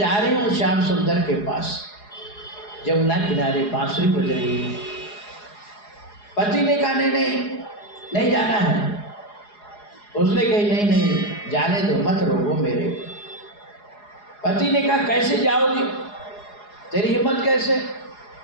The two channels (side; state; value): right; late; 4.8 ms